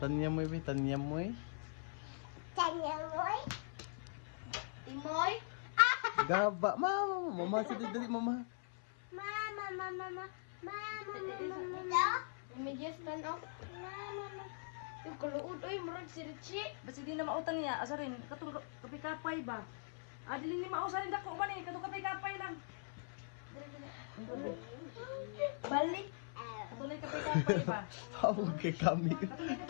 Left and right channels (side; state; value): right; silent; 50 dB below the other